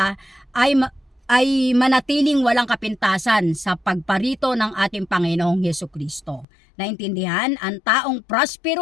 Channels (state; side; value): drops out; right; at 6.5 s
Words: ay manatiling walang kapintasan sa pagparito ng ating Panginoong Hesukristo. Naintindihan? Ang taong